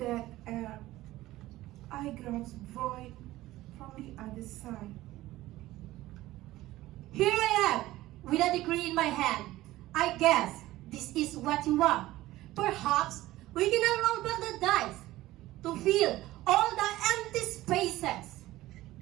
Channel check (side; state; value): left; quieter; 16.6 dB